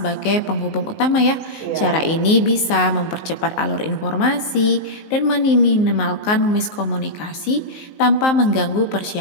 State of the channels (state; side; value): late; right; 19 ms